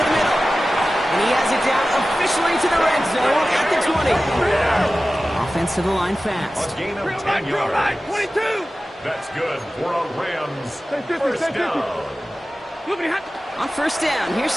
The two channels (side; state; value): both; normal; correlation 0.95